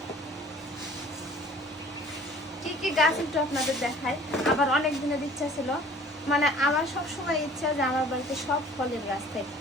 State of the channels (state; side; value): normal; both; correlation 0.50